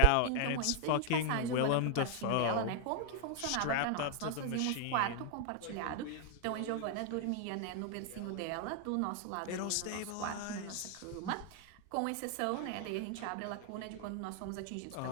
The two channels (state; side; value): different; both; correlation 0.00